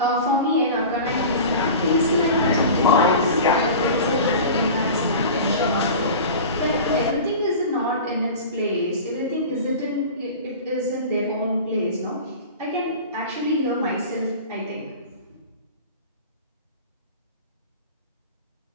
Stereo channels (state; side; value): inverted; both; correlation -0.35